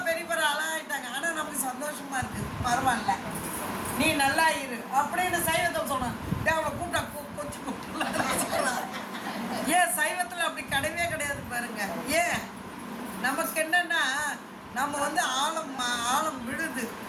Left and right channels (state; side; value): identical; both; correlation 1.00